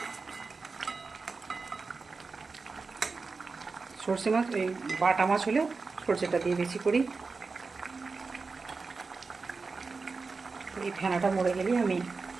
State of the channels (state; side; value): quieter; left; 4.3 dB